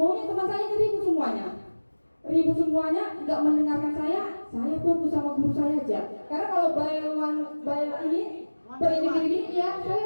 teman saya ribut semuanya. Ribut semuanya, nggak mendengarkan saya fokus sama guru saya aja. Karena kalau bayaran ini per ini ya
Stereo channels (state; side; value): inverted; both; correlation -1.00